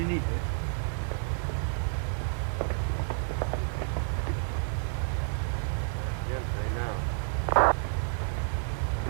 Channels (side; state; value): left; silent; digital silence